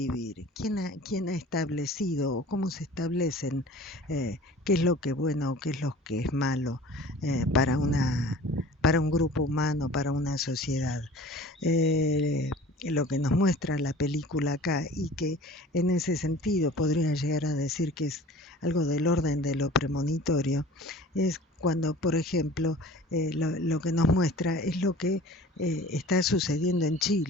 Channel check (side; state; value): both; normal; correlation 0.44